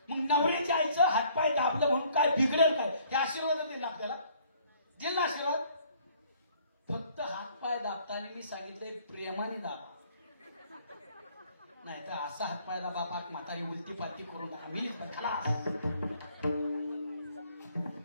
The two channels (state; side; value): inverted; both; correlation -0.60